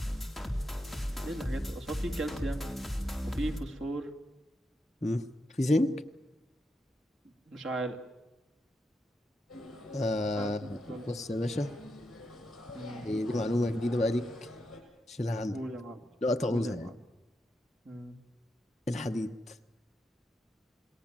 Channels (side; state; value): both; normal; correlation 0.84